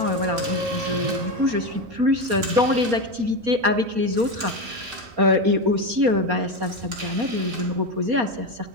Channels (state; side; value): late; left; 4.2 ms